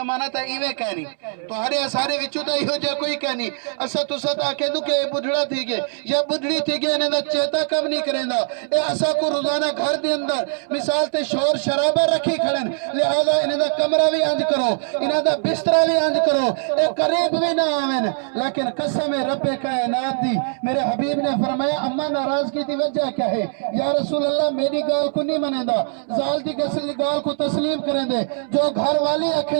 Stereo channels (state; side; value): silent; left; digital silence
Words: تا ایوے کہنی تو ہرے سارے وچو تا ایہو جا کوئی کہنی اسا تو ستا کہہ دوں کہ اے بڑھڑا تھی گے یا بڑھڑی تھی گے انہیں دا چیتا کب نہیں کریں دا اے اسا کو روزانہ گھر دے اندر مثال تے شور شرابہ رکھی کھڑن لہذا انہیں دا کمرہ بھی انج کرو انہیں دا بسترہ بھی انج کرو اے قریب بھی نہ آمین لیکن قسم رب کائنات دی میرے حبیب نے فرمایا اما ناراضگی دی وجہ کیا ہے یا رسول اللہ میری گال کو نہیں منیں دا زال دی گال کو تسلیم کریں دے جو گھر والی